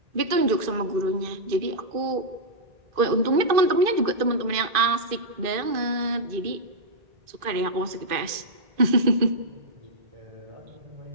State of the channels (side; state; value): left; late; 2.4 ms